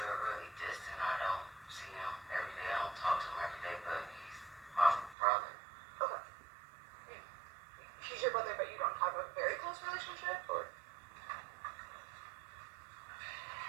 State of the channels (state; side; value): drops out; left; at 5.2 s